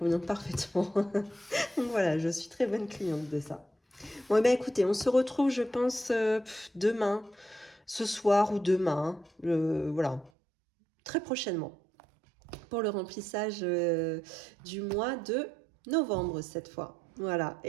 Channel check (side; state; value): left; drops out; at 10.3 s